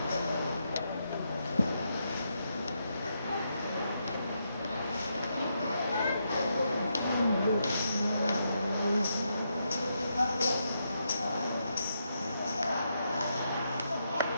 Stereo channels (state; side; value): inverted; both; correlation -0.81